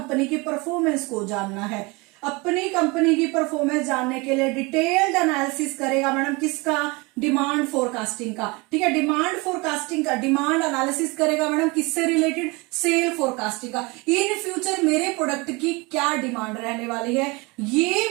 की परफॉर्मेंस को जानना है, अपनी कंपनी की परफॉर्मेंस जानने के लिए डिटेल्ड एनालिसिस करेगा मैडम किसका, डिमांड फोरकास्टिंग का। ठीक है, डिमांड फोरकास्टिंग का डिमांड एनालिसिस करेगा मैडम किससे रिलेटेड, सेल फोरकास्टिंग का। इन फ्यूचर मेरे प्रोडक्ट की क्या डिमांड रहने वाली है,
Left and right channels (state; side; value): quieter; left; 26.2 dB